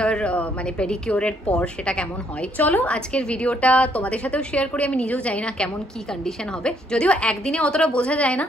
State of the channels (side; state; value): both; normal; correlation 0.69